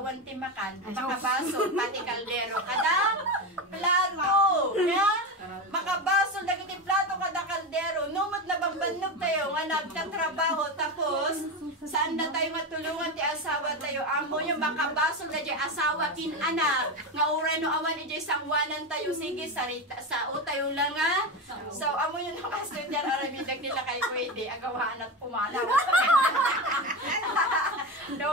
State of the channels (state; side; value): normal; both; correlation 0.18